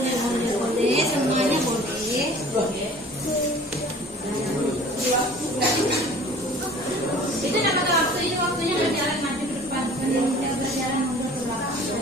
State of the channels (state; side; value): normal; both; correlation 0.47